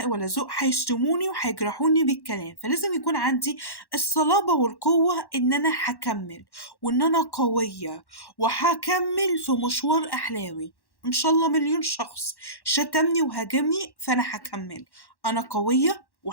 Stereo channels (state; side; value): late; right; 1.1 ms